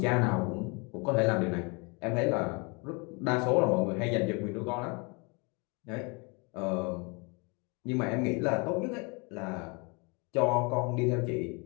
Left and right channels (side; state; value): right; quieter; 30.8 dB